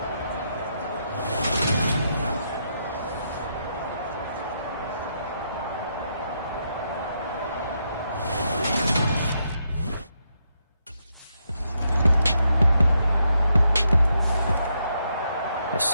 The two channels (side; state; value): both; inverted; correlation -0.80